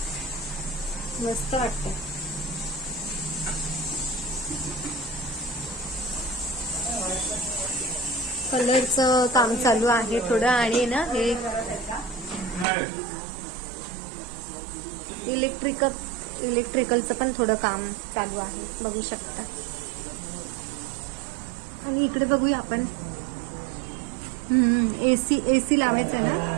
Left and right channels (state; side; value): drops out; left; at 12.7 s